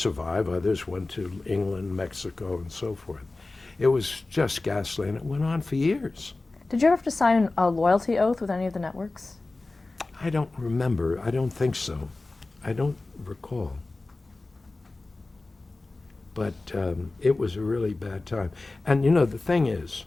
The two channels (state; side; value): quieter; right; 3.3 dB